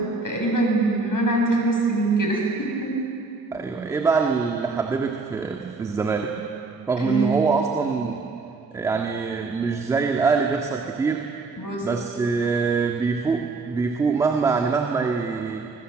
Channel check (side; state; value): left; quieter; 3.9 dB